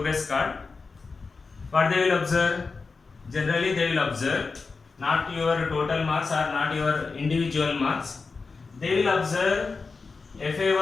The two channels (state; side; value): quieter; right; 4.4 dB